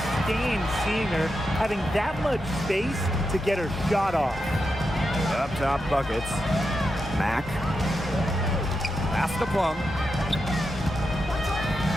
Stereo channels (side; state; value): both; normal; correlation 0.87